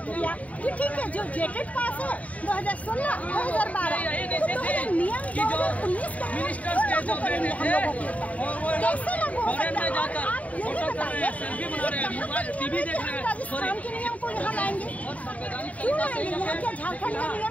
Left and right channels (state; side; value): late; right; 0.069 ms